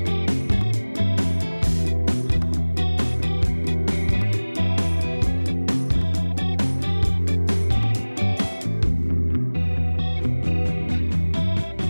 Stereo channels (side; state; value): both; inverted; correlation -1.00